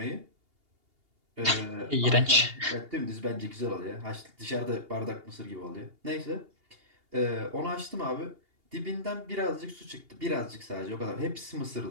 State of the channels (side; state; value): left; late; 2.8 ms